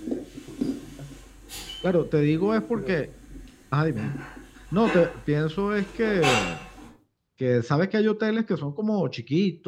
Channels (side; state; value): both; identical; correlation 1.00